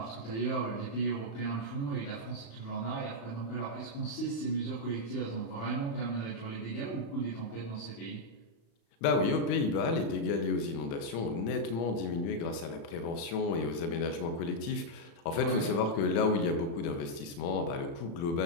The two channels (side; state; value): right; late; 36 ms